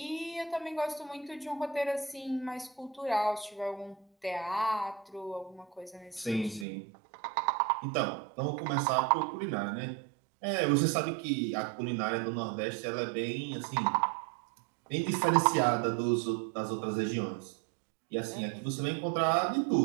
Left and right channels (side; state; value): left; drops out; at 6.7 s